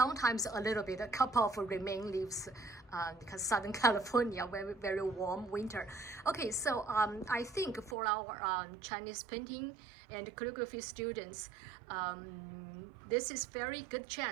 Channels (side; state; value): left; drops out; at 8.0 s